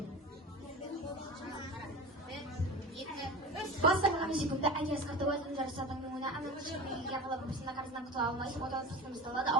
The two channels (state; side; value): normal; both; correlation 0.31